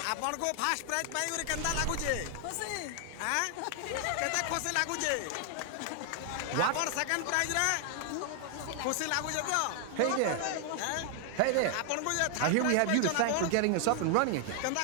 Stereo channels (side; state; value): both; different; correlation 0.00